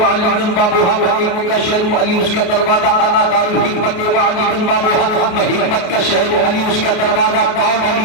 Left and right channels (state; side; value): late; right; 28 ms